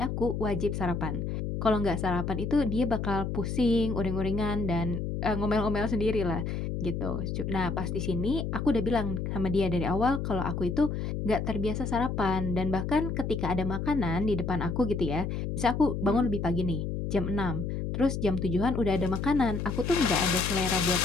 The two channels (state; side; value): noise; left; hum, 3 dB below the sound